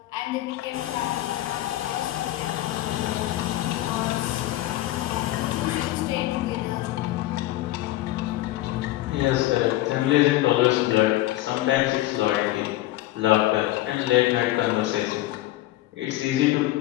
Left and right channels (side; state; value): right; quieter; 16.0 dB